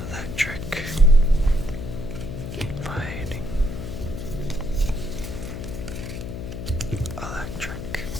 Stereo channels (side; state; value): left; noise; hum, 7 dB below the sound